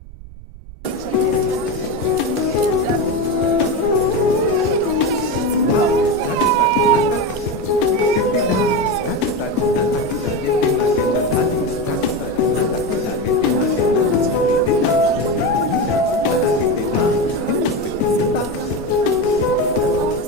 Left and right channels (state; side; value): noise; right; rumble, 16 dB below the sound